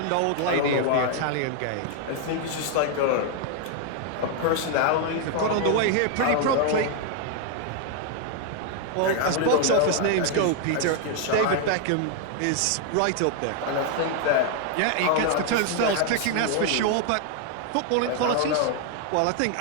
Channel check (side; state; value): both; different; correlation 0.00